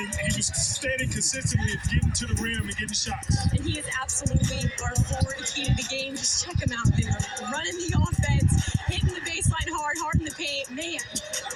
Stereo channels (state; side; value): identical; both; correlation 1.00